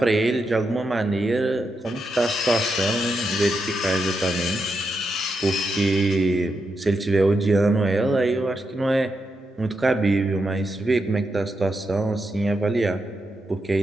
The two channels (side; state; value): both; normal; correlation 0.84